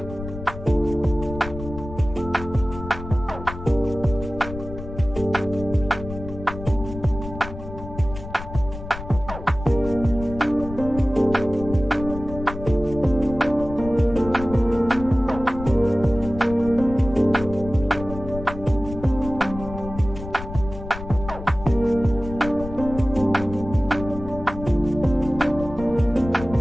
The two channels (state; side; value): noise; left; rumble, 11 dB below the sound